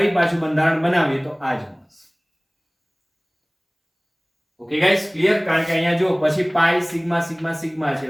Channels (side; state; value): both; identical; correlation 1.00